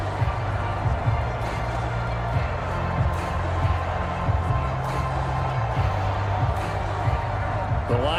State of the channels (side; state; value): both; identical; correlation 1.00